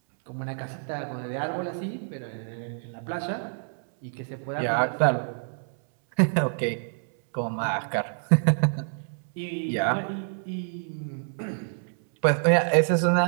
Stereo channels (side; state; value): left; silent; 60 dB below the other